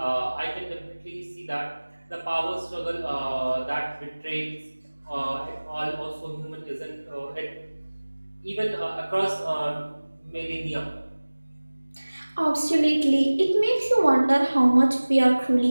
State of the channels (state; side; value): inverted; both; correlation -1.00